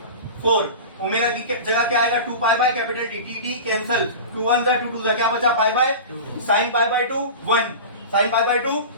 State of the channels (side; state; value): both; inverted; correlation -0.31